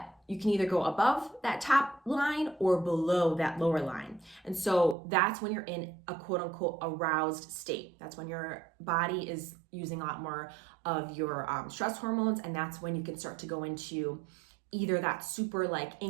you can either go above that top line or below that lower line. And so that's when you're in a quote unquote aroused state. That's when your body is using a lot more of your stress hormones. And that's when you can start to go into either that super like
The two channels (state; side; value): drops out; left; at 5.0 s